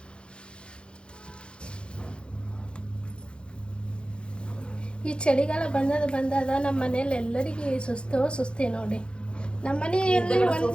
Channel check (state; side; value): late; right; 0.055 ms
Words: ಈ ಚಳಿಗಾಲ ಬಂದಾಗ ನಮ್ಮ ಮನೇಲಿ ಎಲ್ಲರಿಗೂ ಸುಸ್ತಿ ನೋಡಿ. ನಮ್ಮ ಮನೆಯಲ್ಲಿ